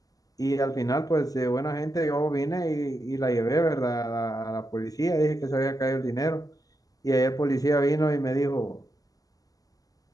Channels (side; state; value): right; late; 0.17 ms